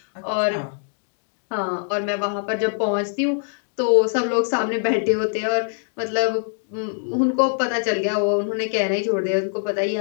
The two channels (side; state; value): right; silent; digital silence